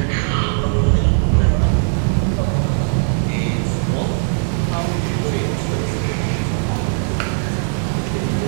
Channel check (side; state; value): left; silent; digital silence